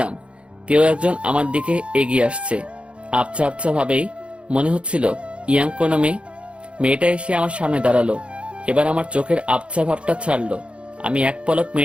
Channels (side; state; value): left; late; 0.059 ms